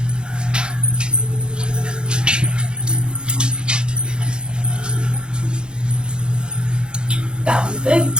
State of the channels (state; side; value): late; left; 0.050 ms